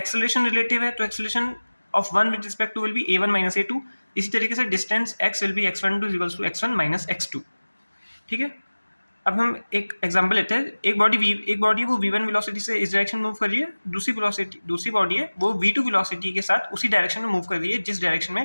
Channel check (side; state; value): both; inverted; correlation -1.00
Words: रिलेटिव है तो acceleration of one with respect to will be A one minus A two. इसी तरीके से distance X will be X one two equals to X one minus X to. ठीक है, अब हम एक एग्जांपल लेते हैं। एक बॉडी है वो v1 वेलोसिटी से इस डायरेक्शन में मूव कर रही है, दूसरी बॉडी है वो v2 वेलोसिटी के साथ उसी डायरेक्शन में मूव कर रही है जिस डायरेक्शन